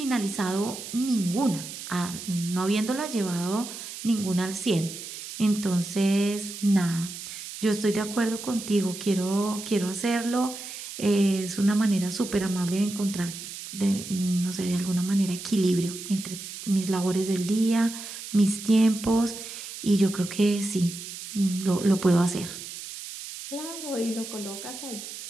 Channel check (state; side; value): noise; right; hiss, 10 dB below the sound